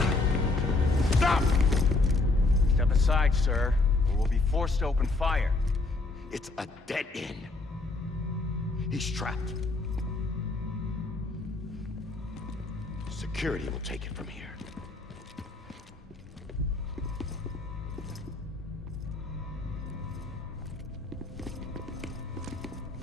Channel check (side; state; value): right; quieter; 3.3 dB